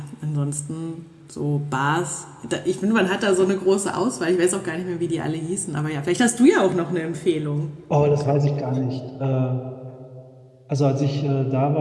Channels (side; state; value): both; identical; correlation 1.00